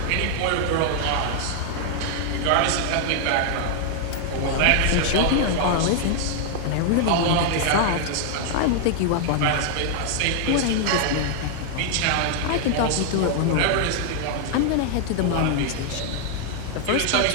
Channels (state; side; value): different; both; correlation 0.00